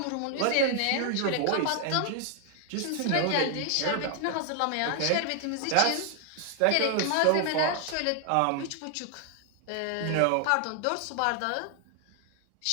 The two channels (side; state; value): both; different; correlation 0.00